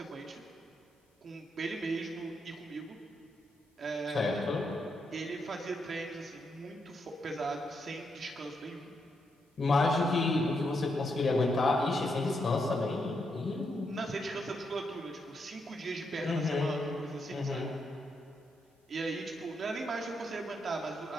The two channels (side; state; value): both; normal; correlation 0.80